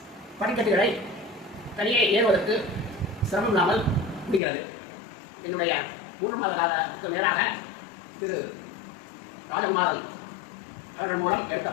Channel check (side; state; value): right; drops out; at 4.4 s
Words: படிக்கட்டுகளை தனியே ஏறுவதற்கு சிரமம் இல்லாமல் முடிகிறது. என்னுடைய 3 மாத காலத்துக்கு மேலாக திரு ராஜகுமாரன் அவர்கள் மூலம் எடுத்த